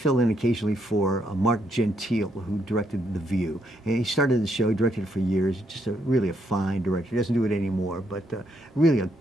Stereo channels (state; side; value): normal; both; correlation 0.75